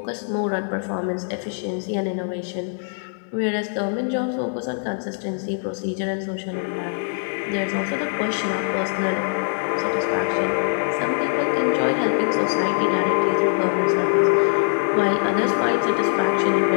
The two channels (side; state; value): right; silent; 64 dB below the other